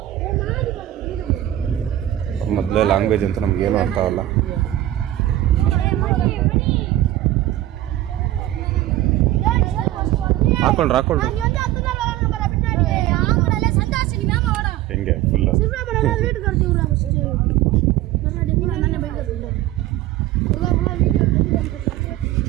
ಮೊದಲೇ ಲ್ಯಾಂಗ್ವೇಜ್ ಅಂತ ನಮಗೇನು ಅರ್ಥ ಆಗಲ್ಲ. ಹಾಕೊಳ್ರಿ ಹೆಂಗೆ ಫುಲ್ಲು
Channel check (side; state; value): left; quieter; 14.3 dB